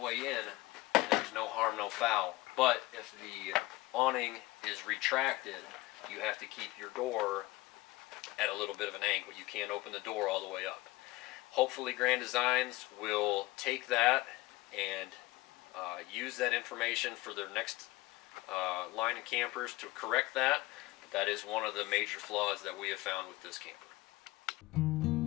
in, there's no harm, no foul. But if the awning is retracted, you have to keep your door at a little bit of an angle. You can't open the door all the way up. Hopefully Grand Designs will take that and use that information for their next line of campers to correct that. But that is one of the major flaws that we have found with this camper.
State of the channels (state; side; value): quieter; right; 20.0 dB